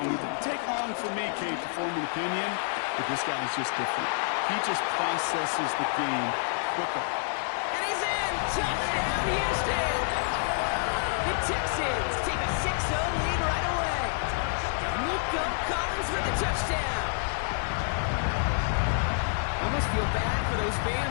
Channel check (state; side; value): silent; right; 59 dB below the other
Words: And it didn't take long for me, Kate, to form an opinion, but this guy's just different. He just processes the game quicker. And he's in! Touchdown, Houston! The Texans take a 6-0 lead right away. Nico Collins for the touchdown. Almost feel bad for those